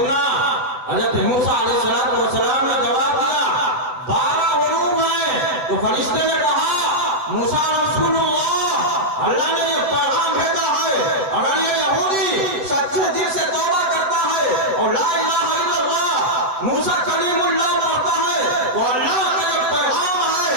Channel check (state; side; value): late; left; 7.7 ms